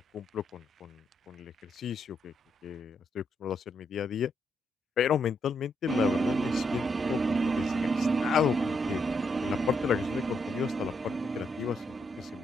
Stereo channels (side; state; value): both; normal; correlation 0.78